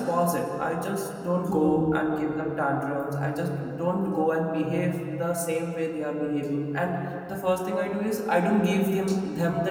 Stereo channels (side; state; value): both; identical; correlation 1.00